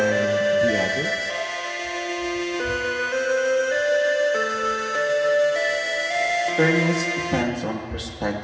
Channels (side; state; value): both; identical; correlation 1.00